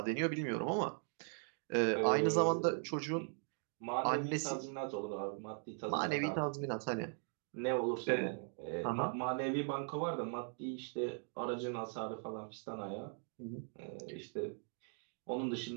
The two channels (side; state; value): left; silent; 51 dB below the other